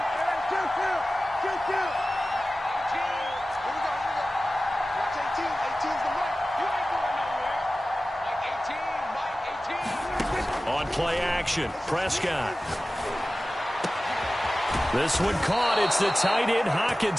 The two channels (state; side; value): normal; both; correlation 0.96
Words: On play action, Prescott. This one caught. It's the tight end,